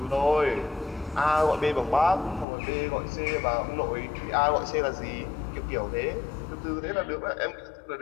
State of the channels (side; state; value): right; drops out; at 2.5 s